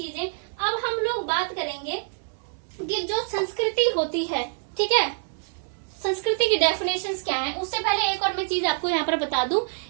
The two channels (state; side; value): silent; left; digital silence